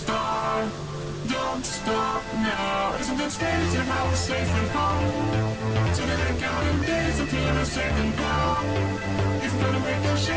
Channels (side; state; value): both; identical; correlation 1.00